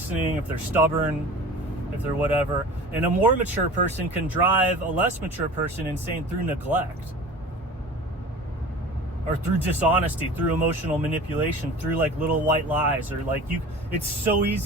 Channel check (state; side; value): normal; both; correlation 0.39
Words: if they're stubborn, if they're whatever. And a more mature person can drive a less mature person insane through neglect. Or through dishonesty, through emotional manipulation, through like little white lies, or like it's so